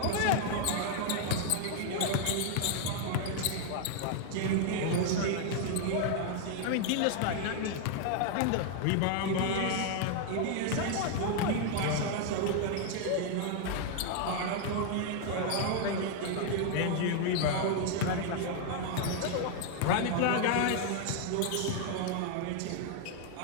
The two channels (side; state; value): both; different; correlation 0.00